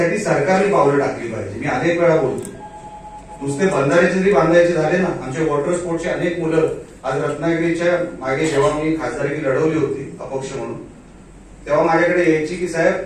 सरकारने पावलं टाकली पाहिजे. मी अनेक वेळा बोलतो. नुसते बंधाऱ्याचे जरी बांधायचे झाले ना, आमच्या वॉटर स्पोर्टचे अनेक मुलं आज रत्नागिरीच्या मागे जेव्हा मी खासदारकी लढवली होती अपक्ष म्हणून, तेव्हा माझ्याकडे यायची की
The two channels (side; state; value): both; identical; correlation 1.00